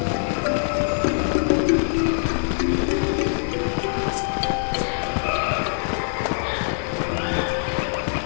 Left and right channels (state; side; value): silent; right; 63 dB below the other